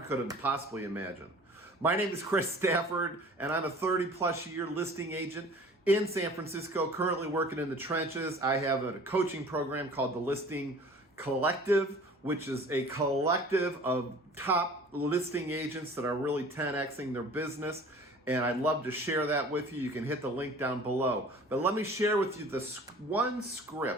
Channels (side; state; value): both; normal; correlation 0.46